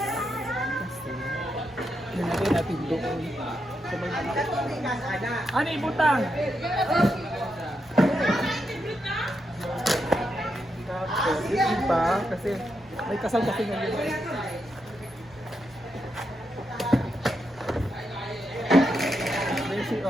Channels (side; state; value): both; normal; correlation 0.84